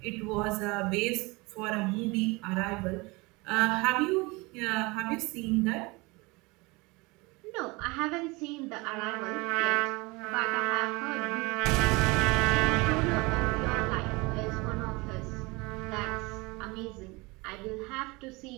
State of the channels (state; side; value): quieter; left; 24.8 dB